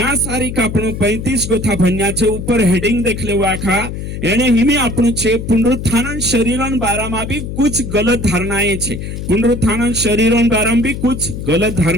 सारी का आपणो 35 गोथा भन्या छे ऊपर हेडिंग देख ले आखा एने हिमी आपणो छे पुनरुत्थान शरीरन बारामा भी कुछ गलत धारणाएं छे पुनरुत्थान शरीरन बारामा भी कुछ गलत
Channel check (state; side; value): noise; left; hum, 7 dB below the sound